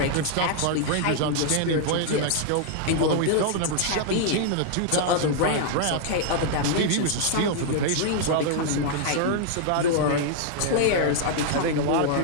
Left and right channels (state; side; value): different; both; correlation -0.01